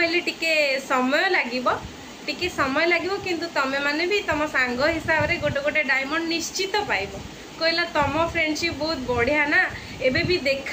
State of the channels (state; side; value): identical; both; correlation 1.00